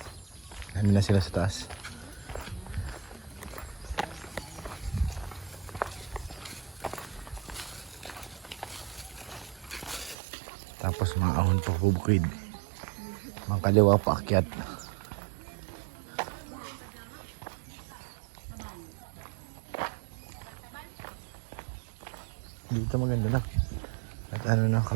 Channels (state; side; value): drops out; left; at 10.2 s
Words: Ano na sila sa taas. Tapos mga ahon pa bubukid. Mga kaliwa pa akyat. Dito maganda na. At ano na,